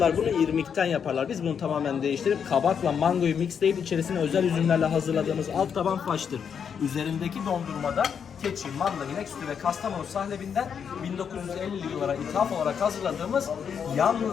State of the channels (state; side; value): quieter; right; 7.3 dB